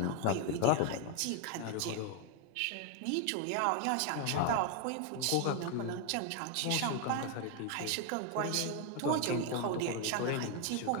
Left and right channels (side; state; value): both; different; correlation 0.01